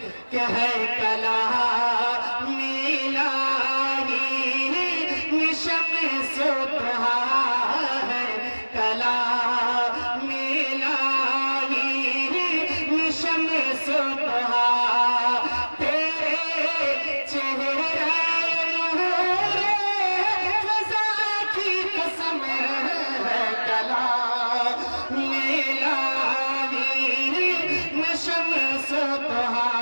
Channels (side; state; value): both; inverted; correlation -1.00